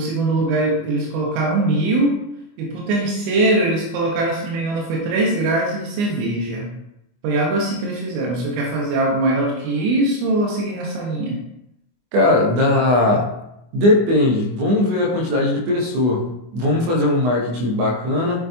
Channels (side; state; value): left; late; 24 ms